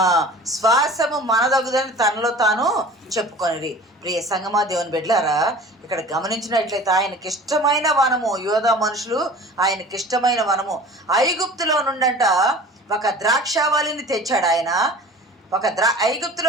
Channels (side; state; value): both; normal; correlation 0.42